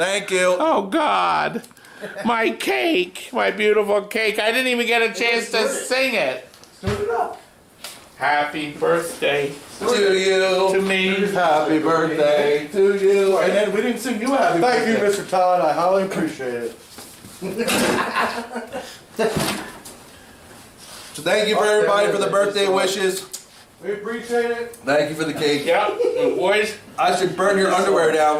you. Oh God! My cake, my beautiful cake. I didn't even get a chance to sing it. Happy birthday To you. to me. Happy birthday to you. And then we didn't sing you a happy birthday. Thank you, Mr. Todd. I highly appreciate it. So thank you for everybody for the birthday wishes. We appreciate it. Thank you for the cake. Yep, the boys I should burn your underwear down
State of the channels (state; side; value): identical; both; correlation 1.00